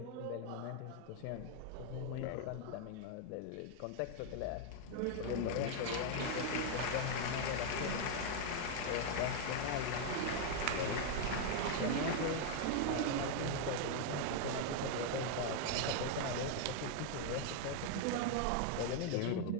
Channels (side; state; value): both; different; correlation 0.00